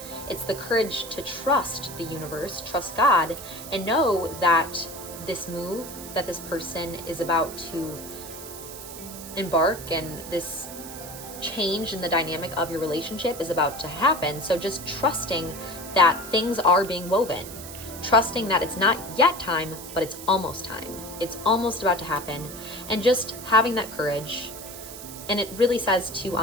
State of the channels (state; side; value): noise; right; hiss, 12 dB below the sound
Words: It's the courage to trust the universe, trust God, and know that this move that this person is about to embark and this change in the dynamic of your relationship is about to happen. So just trusting that things are being woven, trusting that it's not yet time, but it's almost time. It's almost about to happen, and just having that courage. And it really says too